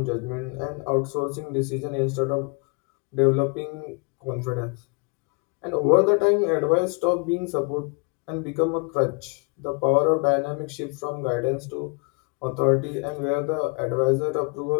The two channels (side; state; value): right; quieter; 32.2 dB